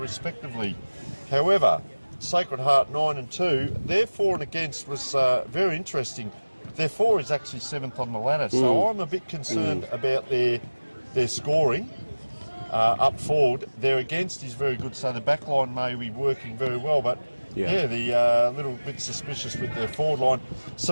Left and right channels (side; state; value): both; inverted; correlation -1.00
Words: However, Sacred Heart 9 and 2, their for and against was very interesting. Their for is actually 7th on the ladder, so I'm a bit concerned about their scoring. Up forward, their against is very good, so the back line may be working very well, but the little bit suspicious with their forward line.